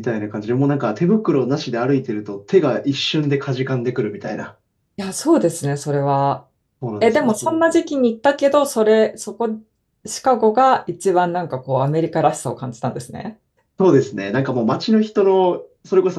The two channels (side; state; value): both; identical; correlation 1.00